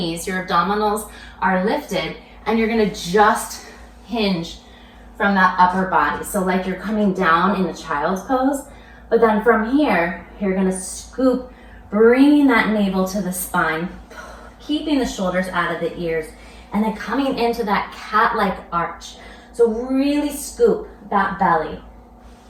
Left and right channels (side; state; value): both; identical; correlation 1.00